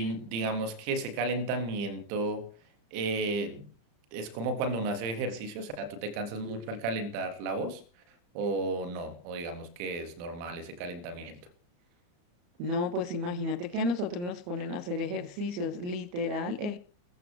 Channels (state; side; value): late; left; 35 ms